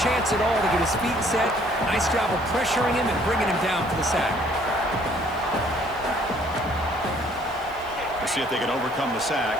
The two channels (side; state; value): right; noise; hiss, 25 dB below the sound